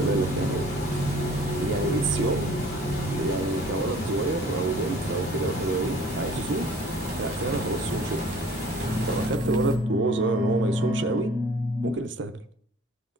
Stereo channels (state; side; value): normal; both; correlation 0.51